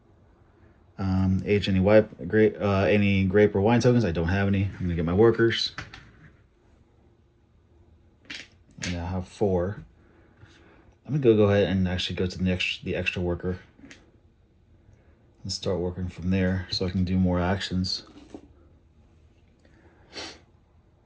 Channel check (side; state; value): both; identical; correlation 1.00